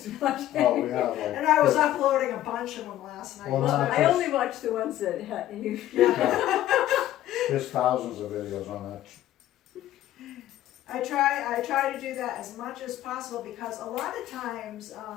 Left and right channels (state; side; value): quieter; right; 13.4 dB